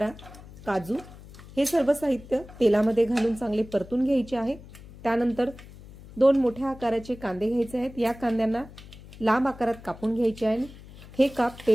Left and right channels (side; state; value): left; noise; hum, 18 dB below the sound